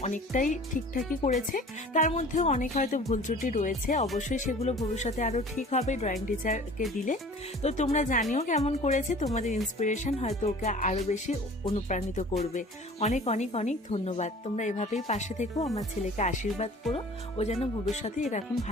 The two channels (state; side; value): normal; both; correlation 0.46